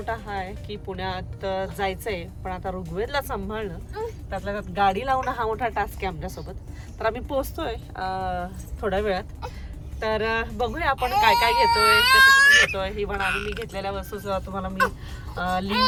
हा आहे की पुण्यात जायचंय, पण आता ऋग्वेदला सांभाळणं, त्यातल्या त्यात गाडी लावणं हा मोठा टास्क आहे आमच्यासोबत. तर आम्ही पोहोचतोय थोड्या वेळात. तर बघूया आपण काय काय घेतोय, कसं घेतोय. इव्हन आणि मी घेतलेल्या वस्तूचं तुम्हाला मी लिंक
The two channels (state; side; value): identical; both; correlation 1.00